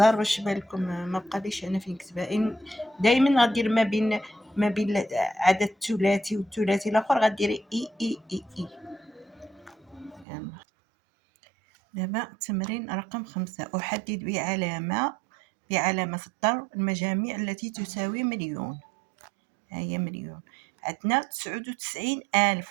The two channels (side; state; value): left; drops out; at 10.2 s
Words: باش يبان لكم ما بقاليش انا فين نكتبها. دائما غدير ما بين عدد ثلاثي والثلاثي الاخر غديري اي. دابا التمرين رقم 5. احدد بعلامة الضرب المجاميع التي تساوي مليون. هي مليون. عندنا